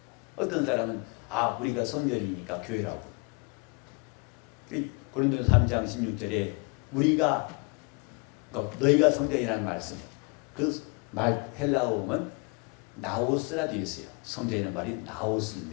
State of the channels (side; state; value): right; quieter; 32.1 dB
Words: 어떤 사람은 우리가 성전이니까 교회라고. 고린도서 3장 16절에 너희가 성전이라는 말씀, 그 말 헬라어 보면 나오스라 되어 있어요. 성전이라는 말이